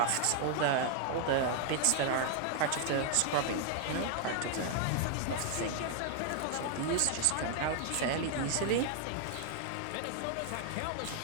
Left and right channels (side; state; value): both; different; correlation 0.00